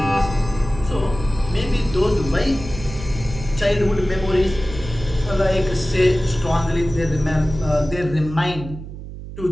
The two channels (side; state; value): right; noise; hum, 11 dB below the sound